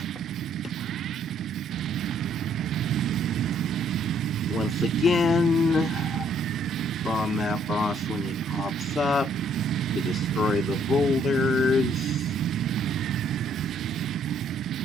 Once again, bomb that boss when he pops up to destroy the boulders.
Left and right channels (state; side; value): normal; both; correlation 0.66